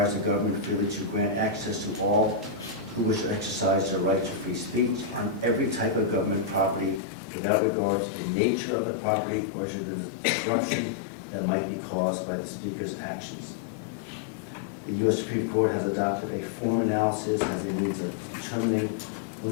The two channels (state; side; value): drops out; right; at 7.0 s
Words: the government freely to grant access to all who wish to exercise their right to free speech on every type of government property without regard to the nature of the property or to the disruption that might be caused by the speaker's actions." The U.S. Supreme Court has adopted a form analysis as a means of determining